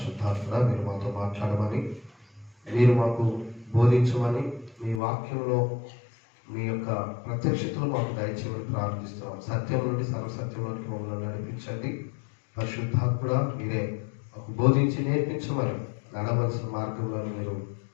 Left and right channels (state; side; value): drops out; right; at 5.0 s